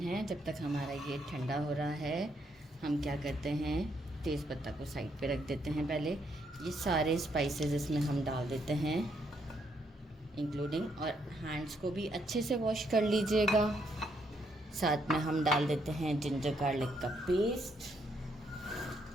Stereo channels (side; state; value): both; normal; correlation 0.74